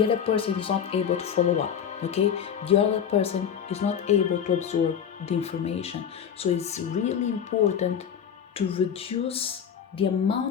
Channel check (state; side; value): quieter; right; 8.1 dB